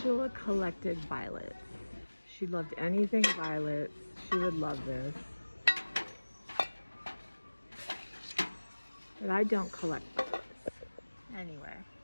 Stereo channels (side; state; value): both; inverted; correlation -1.00